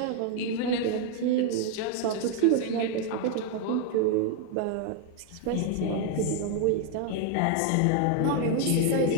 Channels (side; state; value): both; different; correlation 0.01